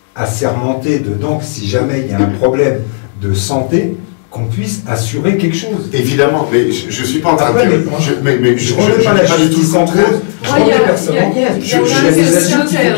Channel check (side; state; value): right; silent; digital silence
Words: assermentées dedans, si jamais il y a un problème de santé, qu'on puisse assurer quelque chose. Évidemment, mais je ne suis pas en train de dire... Je ne remets pas du tout le contraire. Je remets personne. Il faut